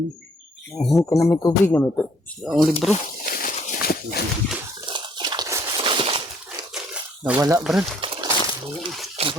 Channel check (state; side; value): normal; both; correlation 0.63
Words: Ka na may tubig na may ang libro. Nawala, Brad.